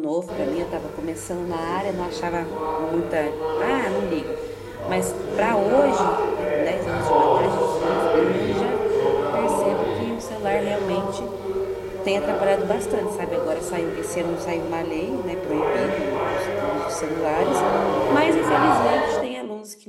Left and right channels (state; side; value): identical; both; correlation 1.00